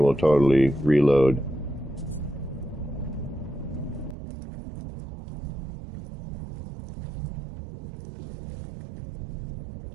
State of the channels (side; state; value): left; drops out; at 4.2 s